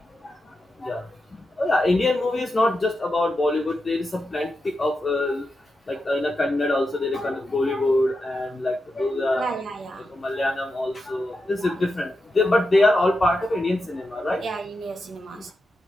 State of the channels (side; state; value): both; normal; correlation 0.88